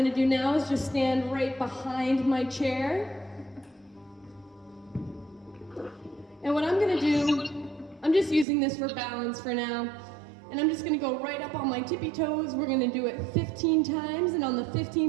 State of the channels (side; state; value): left; drops out; at 8.5 s